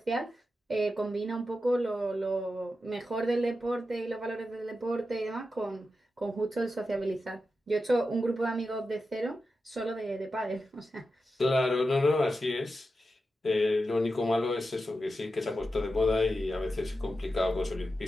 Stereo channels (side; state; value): both; normal; correlation 0.90